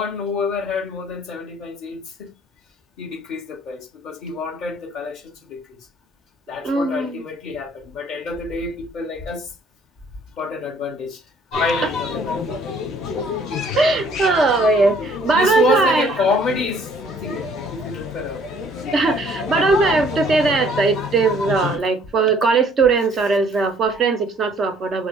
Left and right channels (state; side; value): normal; both; correlation 0.59